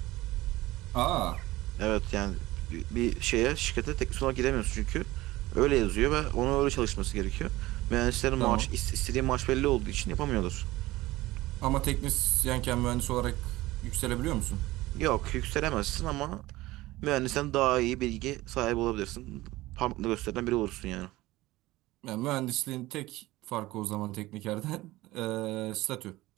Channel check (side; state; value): left; quieter; 18.3 dB